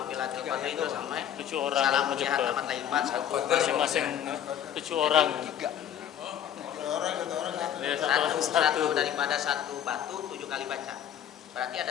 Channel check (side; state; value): right; quieter; 10.0 dB